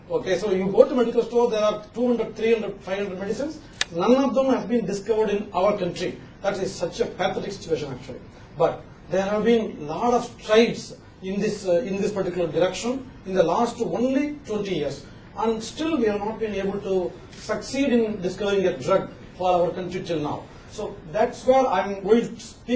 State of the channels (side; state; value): both; identical; correlation 1.00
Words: Okay, so you go to medical store, there are 200, 300, 500 medicines. None of them have been discovered in our country. That is such a pathetic situation actually. But there have been a lot of strides in this particular direction in the last only 20 years. And still we have not been able to succeed in discovering a drug for our country till now. So that's where I'm going to